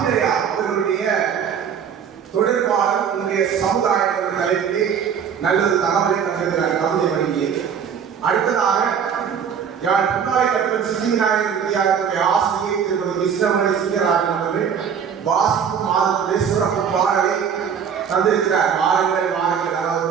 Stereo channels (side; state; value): left; quieter; 7.5 dB